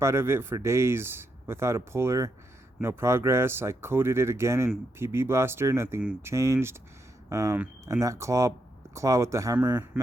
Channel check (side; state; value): both; normal; correlation 0.81